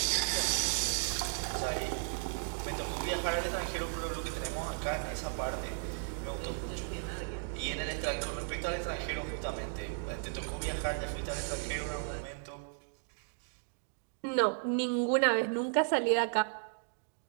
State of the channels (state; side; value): silent; left; digital silence